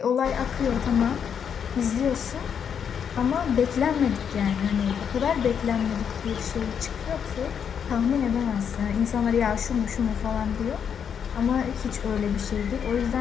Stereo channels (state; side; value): quieter; right; 7.6 dB